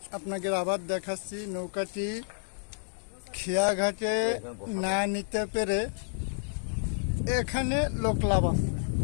আপনাকে আবার দেখাচ্ছি। নৌকাটি খেয়া ঘাটে না নিতে পেরে এখানে লোক লাভ আছে।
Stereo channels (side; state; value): right; silent; digital silence